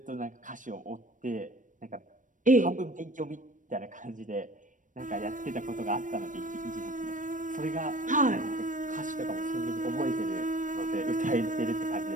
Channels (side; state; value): left; late; 0.37 ms